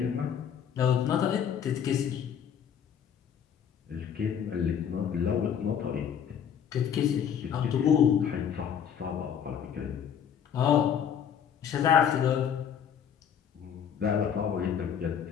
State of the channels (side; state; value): right; quieter; 8.3 dB